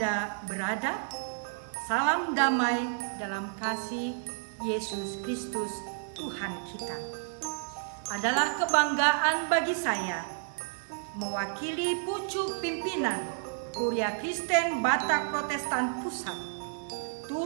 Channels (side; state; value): left; silent; digital silence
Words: berada, salam damai dalam kasih Yesus Kristus Tuhan kita. Adalah kebanggaan bagi saya mewakili pucuk pimpinan Kuria Kristen Batak Protestan Pusat